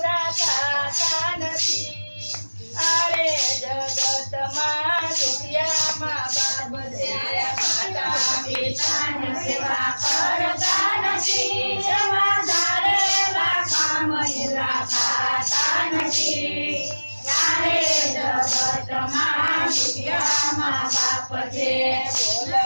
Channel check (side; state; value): both; inverted; correlation -1.00